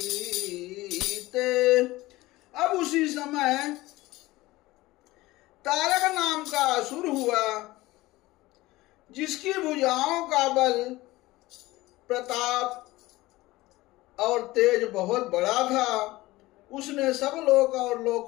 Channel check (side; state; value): right; quieter; 18.9 dB